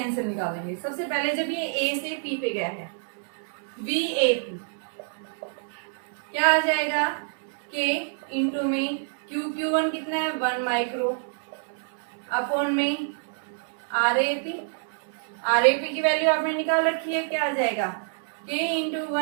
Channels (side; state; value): left; silent; digital silence